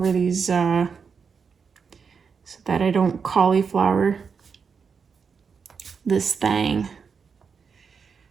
these so that I don't cauliflower this thing.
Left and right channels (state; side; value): quieter; left; 5.9 dB